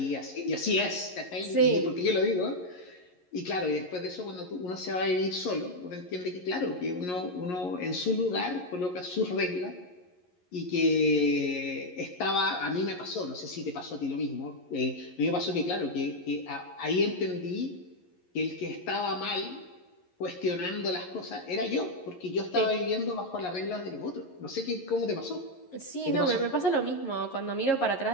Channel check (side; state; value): right; late; 11 ms